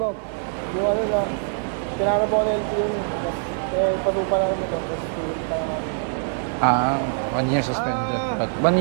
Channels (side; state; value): left; silent; digital silence